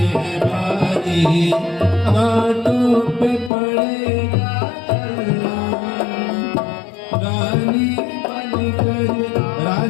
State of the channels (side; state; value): right; drops out; at 3.5 s